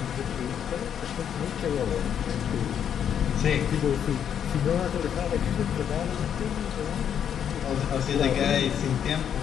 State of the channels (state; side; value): quieter; right; 8.7 dB